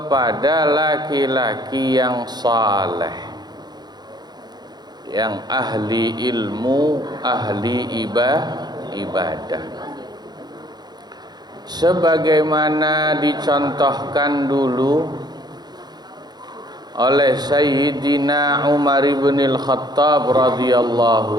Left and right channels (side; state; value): left; late; 0.20 ms